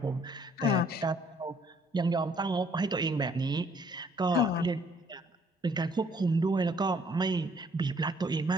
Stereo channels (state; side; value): normal; both; correlation 0.63